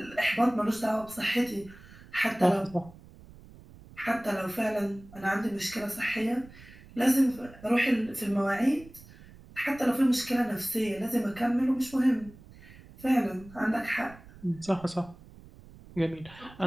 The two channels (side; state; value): right; noise; rumble, 21 dB below the sound